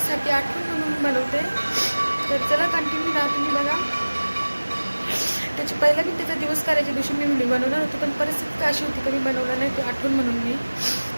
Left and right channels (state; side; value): inverted; both; correlation -1.00